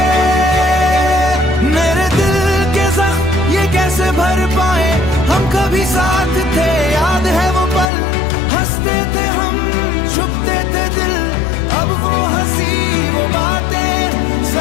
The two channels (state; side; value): drops out; right; at 7.9 s